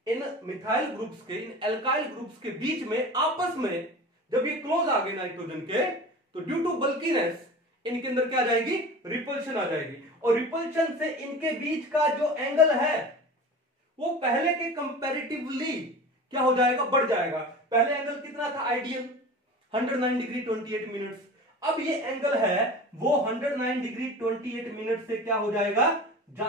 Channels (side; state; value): both; normal; correlation 0.35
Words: इन मिथाइल ग्रुप्स के, इन एल्काइल ग्रुप्स के बीच में आपस में जब ये क्लोज आ गए नाइट्रोजन के, तो ड्यू टू बल्कीनेस इनके अंदर क्या आ जाएगी, रिपल्शन आ जाएगी। और रिपल्शन से इनके बीच का जो एंगल है वो पहले के कंपैरेटिवली क्या हो जाएगा, बढ़ जाएगा। पहले एंगल कितना था आइडियल, 109 डिग्री 28 मिनट्स। अब ये एंगल है वो 109 डिग्री 28 मिनट से क्या हो जाएगा,